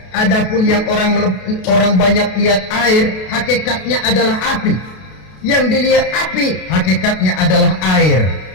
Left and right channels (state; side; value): late; right; 32 ms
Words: adapun yang orang banyak lihat air, hakikatnya adalah api. Yang dilihat api, hakikatnya adalah air.